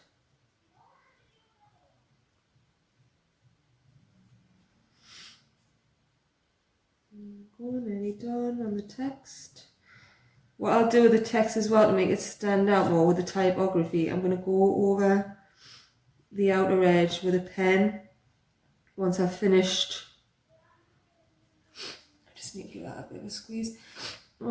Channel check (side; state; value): both; identical; correlation 1.00